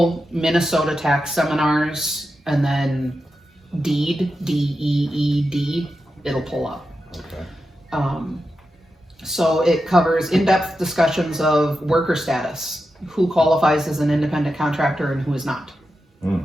Minnesota tax seminars and then DEED, D-E-E-D, it'll pull up. Okay. So it covers in-depth discussions of worker status, who qualifies as an independent contractor and who is not.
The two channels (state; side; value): normal; both; correlation 0.89